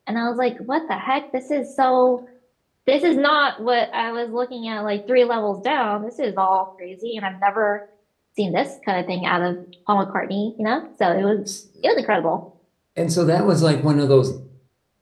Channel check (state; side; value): identical; both; correlation 1.00